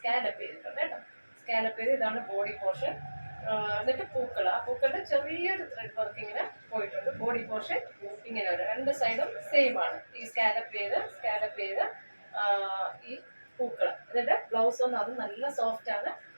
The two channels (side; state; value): both; inverted; correlation -1.00